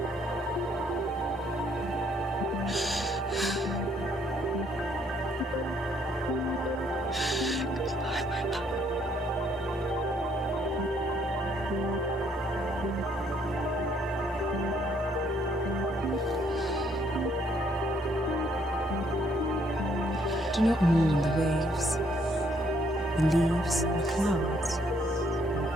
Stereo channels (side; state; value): both; normal; correlation 0.68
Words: Do not mourn the waves, the leaves, and the clouds.